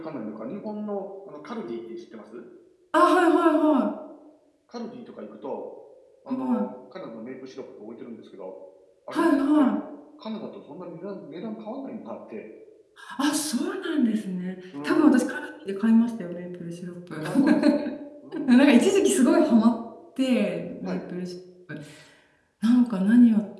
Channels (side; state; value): both; identical; correlation 1.00